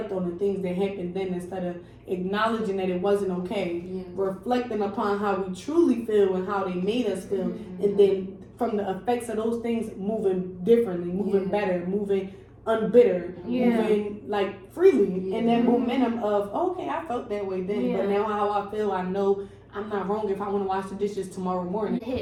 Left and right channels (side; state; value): both; identical; correlation 1.00